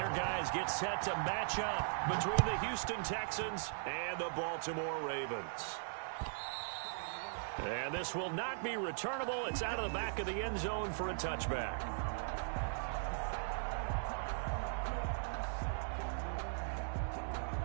guys get set to match up between the Houston Texans and the Baltimore Ravens. And this will not be returnable. It's out of the back of the end zone for a touchback.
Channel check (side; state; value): left; silent; 52 dB below the other